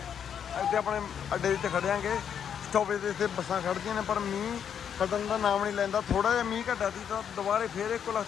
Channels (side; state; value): right; quieter; 8.2 dB